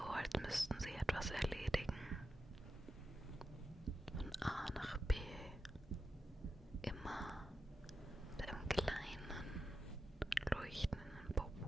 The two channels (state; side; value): normal; both; correlation 0.90